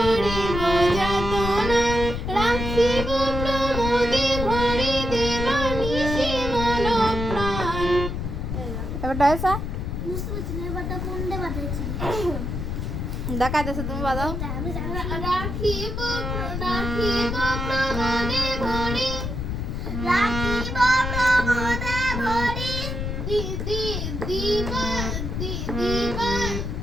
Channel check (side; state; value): left; noise; rumble, 3 dB below the sound